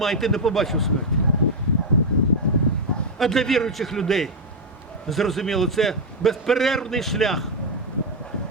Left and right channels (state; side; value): normal; both; correlation 0.02